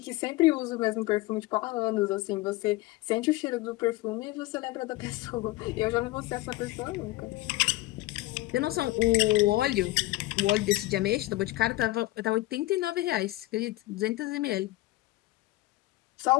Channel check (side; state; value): right; quieter; 18.9 dB